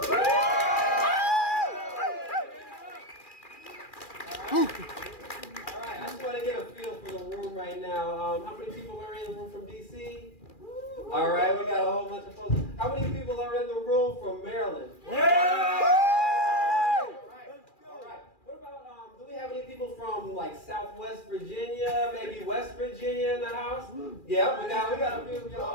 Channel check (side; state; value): right; late; 2.4 ms